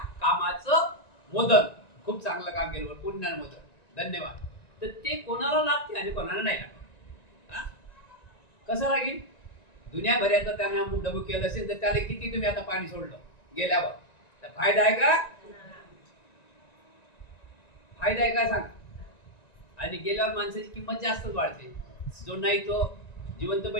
कामाचं मोदन, खूप चांगलं काम केलं पुण्यानं मोदन, धन्यवाद, तर ते कोणाला लागते आणि कोणाला नाही लागत। कसं लागेल? दुनियाभराचं त्याने अमुक डबूक केलं असेल तर त्याला किती तुम्ही आता पाणी सोडलं गेल्यावर, तर फायदा आहे का? फायदा आहे का सांगा? आणि गेल्यावर माणसाची किंमत जास्तच वाढते। जो नाही तो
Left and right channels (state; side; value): late; right; 1.9 ms